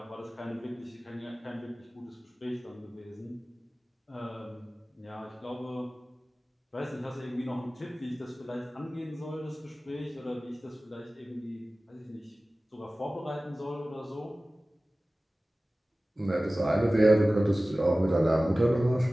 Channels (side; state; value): both; normal; correlation 0.97